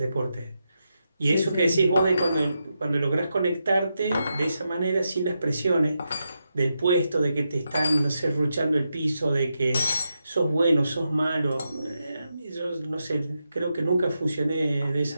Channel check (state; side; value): inverted; both; correlation -0.86